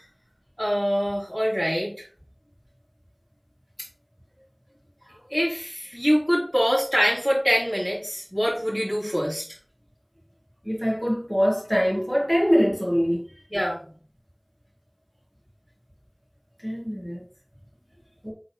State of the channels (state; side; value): identical; both; correlation 1.00